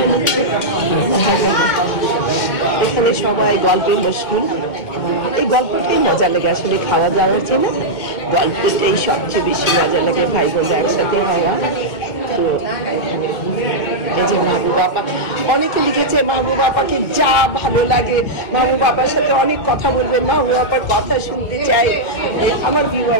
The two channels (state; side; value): late; right; 2.0 ms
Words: নিচ্ছে, এখানে সবাই গল্পে মশগুল। এই গল্পটাই মজা লাগে, আসলে খাওয়া দাওয়ার জন্য গল্পটাই সবচেয়ে বেশি মজা লাগে, ভাই বোনরা একসাথে হওয়া। তো এখানে এই যে মাহবুব আপা, অনেকে লিখেছে মাহবুব আপাকে যা ভালো লাগে, মাহবুব আপার সাথে অনেক কথা বলবেন, মাহবুব আপার কথা শুনতে চাই। আমার